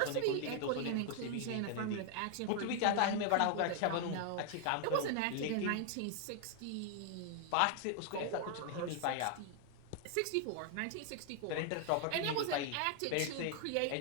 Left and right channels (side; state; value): both; different; correlation 0.00